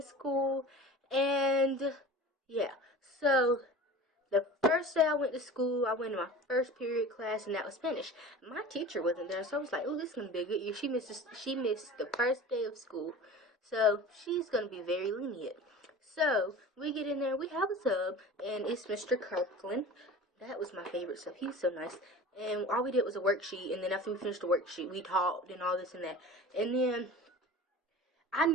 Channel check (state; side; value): normal; both; correlation 0.37